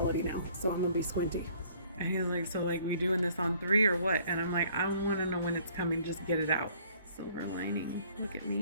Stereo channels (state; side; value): inverted; both; correlation -0.58